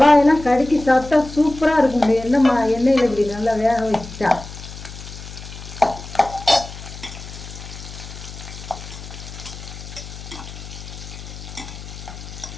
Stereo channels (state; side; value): noise; left; hum, 13 dB below the sound